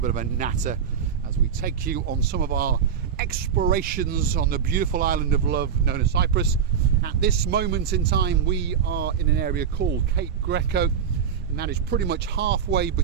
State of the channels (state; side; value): quieter; left; 7.5 dB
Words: of a natter as we take you on some of our explorations on the beautiful island of love known as Cyprus. At this moment in time, we are in an area called Cape Greco, and that is pretty much halfway